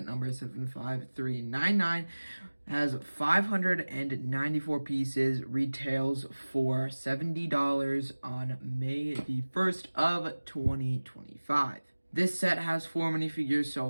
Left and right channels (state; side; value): inverted; both; correlation -1.00